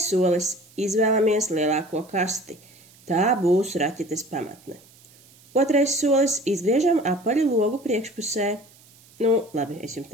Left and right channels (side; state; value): right; noise; hiss, 27 dB below the sound